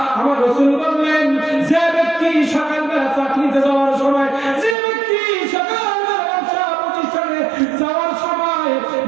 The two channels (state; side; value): drops out; left; at 4.8 s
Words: আমার রাসূল বললেন, যে ব্যক্তি সকালবেলা চাকরিতে যাওয়ার সময়, যে ব্যক্তি সকালবেলা ব্যবসা প্রতিষ্ঠানে যাওয়ার সময়